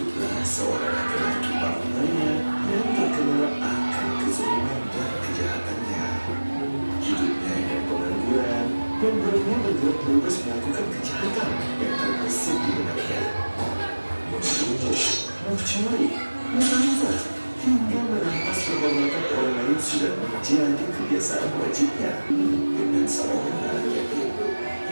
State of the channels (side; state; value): both; inverted; correlation -1.00